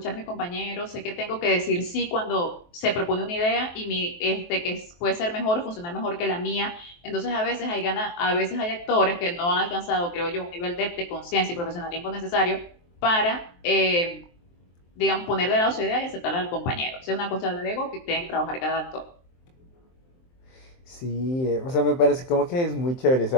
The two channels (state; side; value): late; right; 23 ms